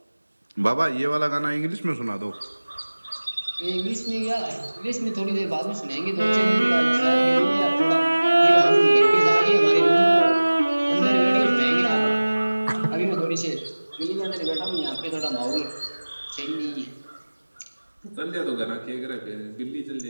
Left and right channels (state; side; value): inverted; both; correlation -1.00